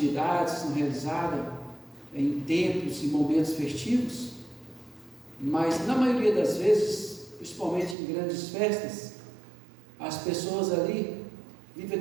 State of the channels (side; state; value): left; drops out; at 8.0 s